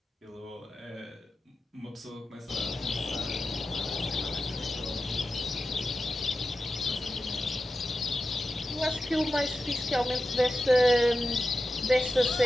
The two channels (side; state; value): both; normal; correlation 0.92